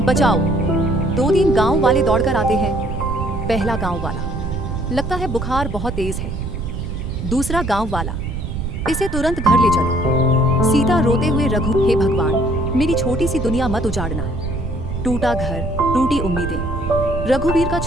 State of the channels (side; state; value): right; noise; rumble, 4 dB below the sound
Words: बचाओ। 2-3 गांव वाले दौड़कर आते हैं। पहला गांव वाला, लगता है बुखार बहुत तेज है। दूसरा गांव वाला, इसे तुरंत घर ले चलो। सीता रोते हुए, रघु, हे भगवान, मेरी छोटी सी दुनिया मत उजाड़ना। टूटा घर, टूटी उम्मीदें। रघुवीर का